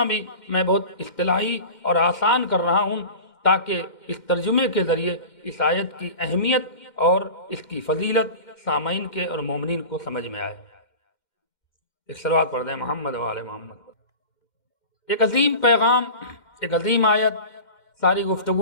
بھی میں بہت اصطلاحی اور آسان کر رہا ہوں تاکہ اس ترجمے کے ذریعے اس آیت کی اہمیت اور اس کی فضیلت سامعین کے اور مومنین کو سمجھ میں آئے۔ ایک صلوات پڑھ دیں محمد و آل محمد۔ ایک عظیم پیغام، ایک عظیم آیت، ساری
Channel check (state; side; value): late; right; 2.1 ms